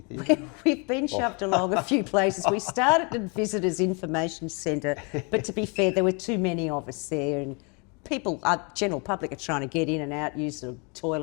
We've been shoved along a few places. We started at Visitors Information Centre, but to be fair, there were too many of us there, and people, general public, are trying to get in and out, use the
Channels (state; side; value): quieter; right; 33.0 dB